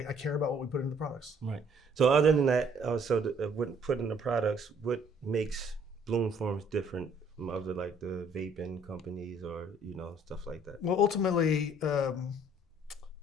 care about what we put into the products. Right. So other than that, what put in the products, what makes Bloom Farms different from other like the vaping companies or stuff like that? Well, ultimately,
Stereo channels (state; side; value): normal; both; correlation 0.61